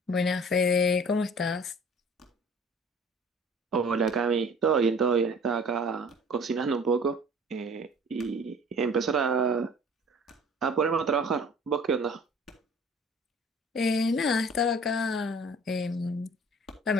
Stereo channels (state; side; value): normal; both; correlation 0.48